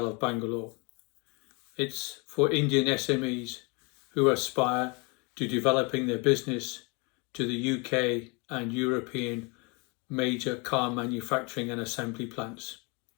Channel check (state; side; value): quieter; right; 30.3 dB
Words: of Bangalore. It's for Indian SMEs who aspire to developing their business to the UK and European major car manufacturing and assembly plants.